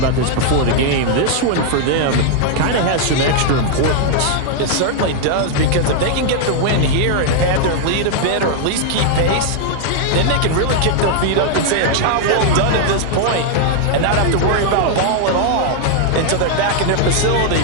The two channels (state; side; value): different; both; correlation 0.00